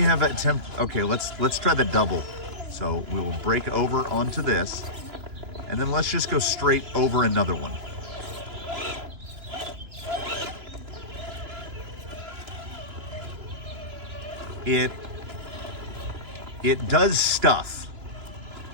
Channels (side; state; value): left; late; 3.0 ms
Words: attempted, okay, let's try the double. So we will break over onto this, and then let's just go straight over another one. It does stuff,